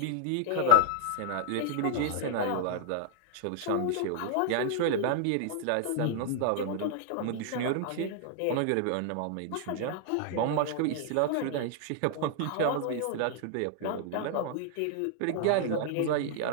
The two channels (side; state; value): both; different; correlation 0.00